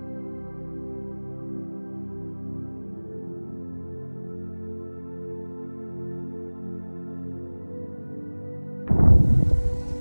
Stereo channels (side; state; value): both; inverted; correlation -1.00